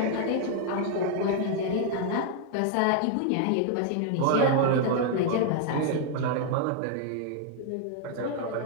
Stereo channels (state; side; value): different; both; correlation 0.00